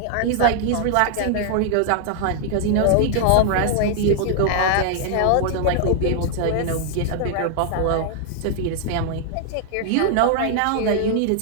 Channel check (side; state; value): both; different; correlation -0.01